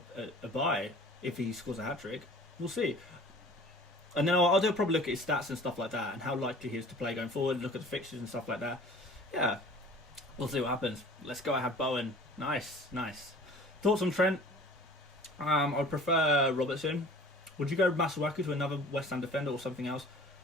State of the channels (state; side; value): normal; both; correlation 0.46